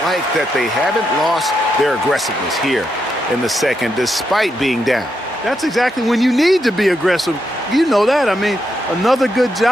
like that they haven't lost their aggressiveness here in the second, despite being down. That's exactly when you need to be aggressive. You know that. I mean, another good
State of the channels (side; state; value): both; normal; correlation 0.82